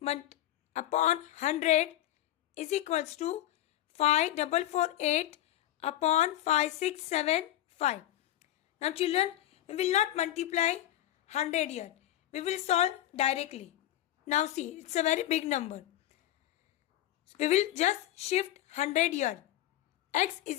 upon 100 is equals to 5448 upon 5675. Now children, we will not multiply 100 here. We will solve directly. Now see, it's a very big number. So we will just shift 100 here. X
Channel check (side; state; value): right; quieter; 13.7 dB